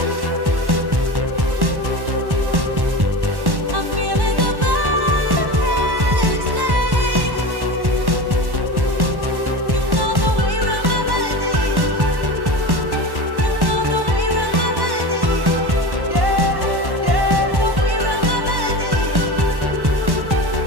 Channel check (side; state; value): left; late; 1.1 ms